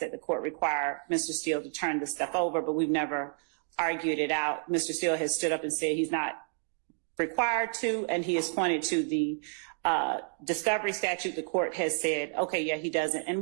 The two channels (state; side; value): silent; left; 58 dB below the other